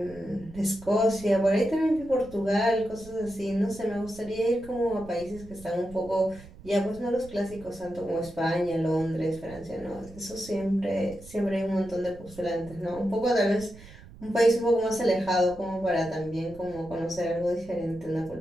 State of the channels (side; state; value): right; noise; rumble, 19 dB below the sound